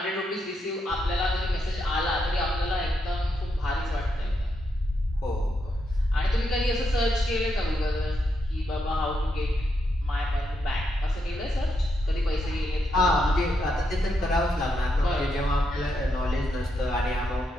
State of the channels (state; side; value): normal; both; correlation 0.81